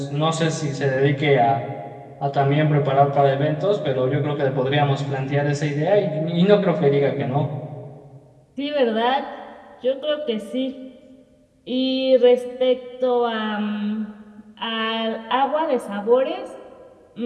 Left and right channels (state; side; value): identical; both; correlation 1.00